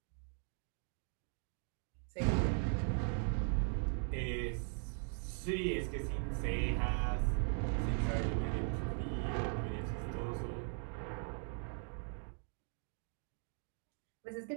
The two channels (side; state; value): left; silent; 51 dB below the other